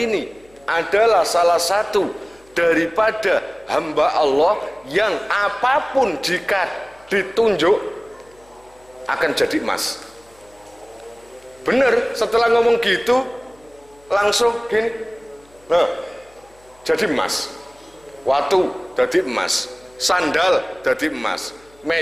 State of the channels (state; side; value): noise; left; hum, 29 dB below the sound